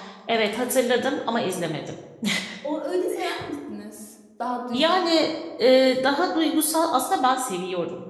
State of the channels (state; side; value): identical; both; correlation 1.00